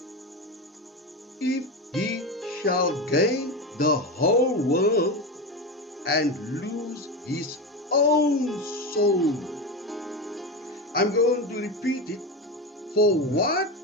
if he shall gain the whole world and lose his own soul? I'm going to repeat it. For what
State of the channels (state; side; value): normal; both; correlation 0.19